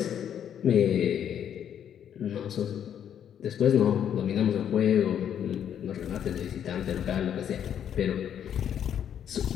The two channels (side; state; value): right; quieter; 9.3 dB